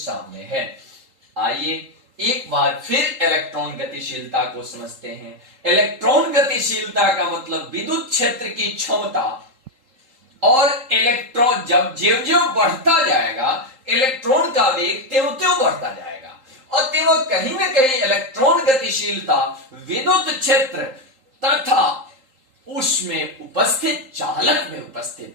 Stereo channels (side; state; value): left; late; 3.8 ms